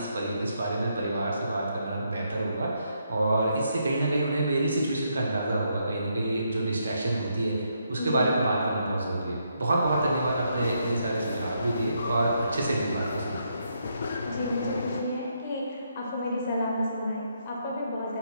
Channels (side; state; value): both; inverted; correlation -0.77